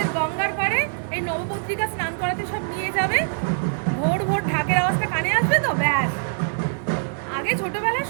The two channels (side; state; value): left; silent; digital silence